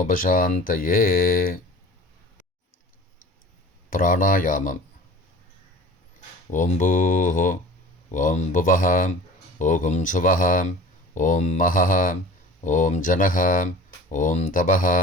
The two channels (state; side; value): normal; both; correlation 0.41